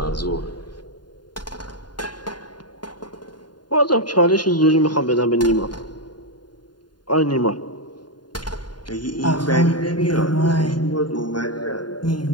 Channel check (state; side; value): late; right; 0.70 ms